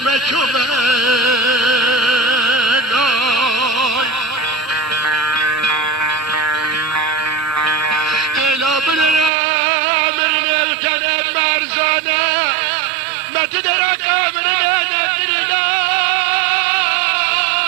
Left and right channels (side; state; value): left; drops out; at 9.3 s